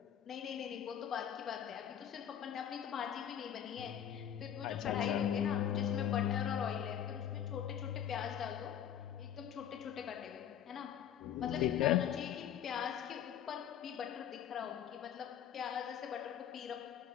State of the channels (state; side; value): quieter; right; 9.6 dB